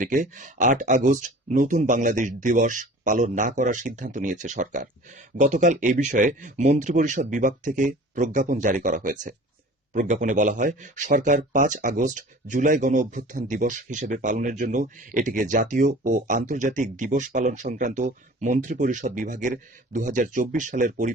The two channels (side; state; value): both; normal; correlation 0.43